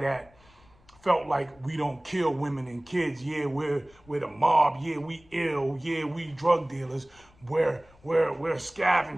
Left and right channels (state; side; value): noise; left; rumble, 28 dB below the sound